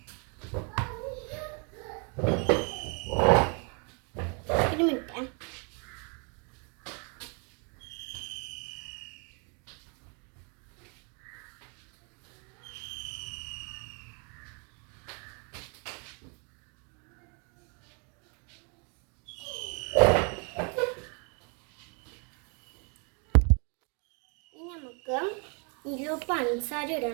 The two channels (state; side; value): quieter; left; 36.1 dB